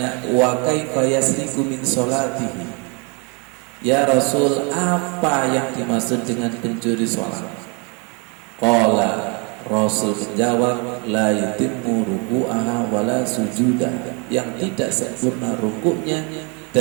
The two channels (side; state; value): left; quieter; 32.7 dB